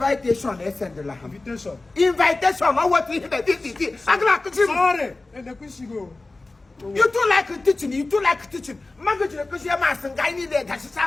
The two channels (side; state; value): right; quieter; 3.2 dB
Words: they send the lamb. Invitation. Invitation, I want to hear this. I'm glad to see. Sorry. And the question go. You too like teaching, you too like teaching. Mango to the Christian mass and guy need that. She's